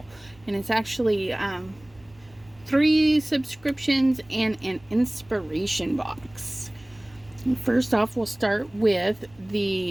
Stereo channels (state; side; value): noise; right; hum, 27 dB below the sound